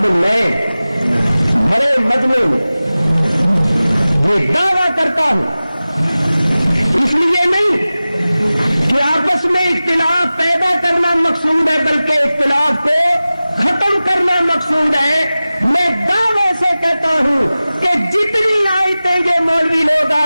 میں بڑے مجمع میں یہ دعویٰ کرتا ہوں، اس لیے نہیں کہ آپس میں اختلاف پیدا کرنا مقصود ہے بلکہ اختلاف کو ختم کرنا مقصود ہے. میں دعوے سے کہتا ہوں کہ جتنی آیتیں یہ مولوی لوگ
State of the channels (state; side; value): inverted; both; correlation -0.97